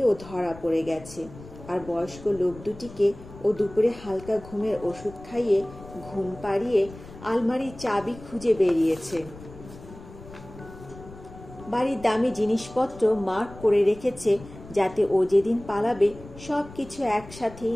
ও ধরা পড়ে গেছে। আর বয়স্ক লোক দুটিকে ও দুপুরে হালকা ঘুমের ওষুধ খাইয়ে ঘুম পাড়িয়ে আলমারির চাবি খুঁজে বেরিয়েছে। বাড়ির দামি জিনিসপত্র মার্ক করে রেখেছে যাতে ও যেদিন পালাবে সবকিছু একসাথেই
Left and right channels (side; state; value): left; noise; rumble, 17 dB below the sound